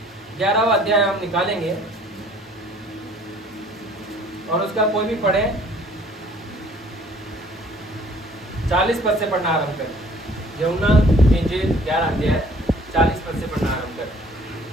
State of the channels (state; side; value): normal; both; correlation 0.55